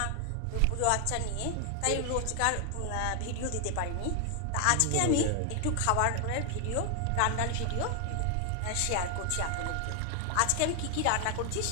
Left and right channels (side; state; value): both; different; correlation 0.00